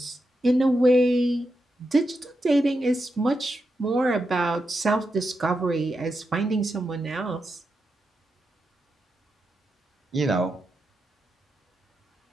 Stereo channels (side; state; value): both; normal; correlation 0.86